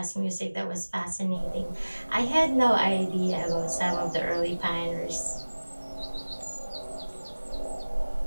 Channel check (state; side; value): inverted; both; correlation -1.00